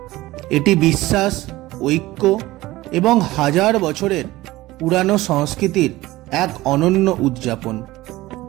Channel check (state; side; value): quieter; left; 18.0 dB